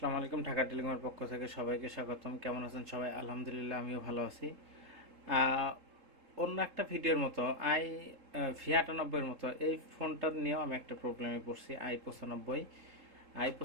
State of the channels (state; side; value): late; left; 3.7 ms